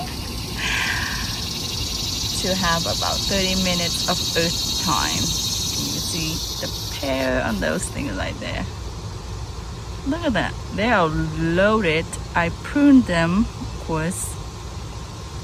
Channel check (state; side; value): identical; both; correlation 1.00